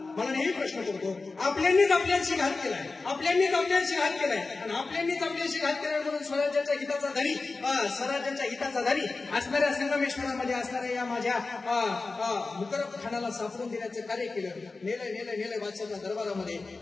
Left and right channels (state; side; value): quieter; right; 3.8 dB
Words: मला नेहमी प्रश्न पडतो, आपल्यांनीच आपल्याशी घात केलाय, आपल्यांनीच आपल्याशी घात केलाय आणि आपल्यांनीच आपल्याशी घात केलाय म्हणून स्वराज्याच्या हिताचा धनी, स्वराज्याच्या हिताचा धनी असणाऱ्या संगमेश्वरामध्ये असणाऱ्या या माझ्या मुकरब खानाला सापडून देण्याचं कार्य केलं. नेलंय बादशाहच्या दरबारामध्ये.